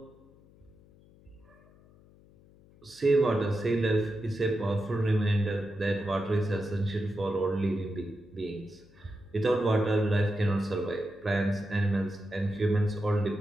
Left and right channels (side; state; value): left; noise; hum, 27 dB below the sound